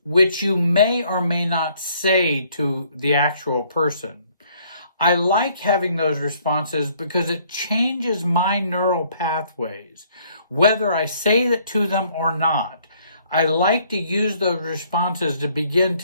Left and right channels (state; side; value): inverted; both; correlation -0.63